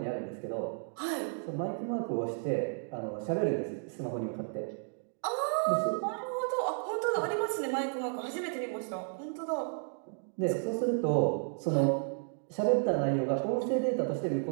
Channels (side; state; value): left; silent; digital silence